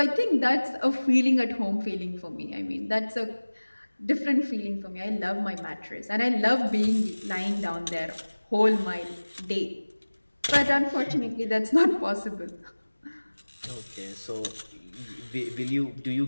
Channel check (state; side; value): inverted; both; correlation -1.00